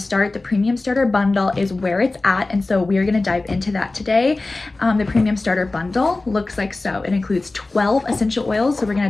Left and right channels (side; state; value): right; quieter; 3.2 dB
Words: the Premium Starter Bundle is where it's at, and so we are going to dive into that today. The Premium Starter Bundle looks like so. It includes 12 essential oils, so we're going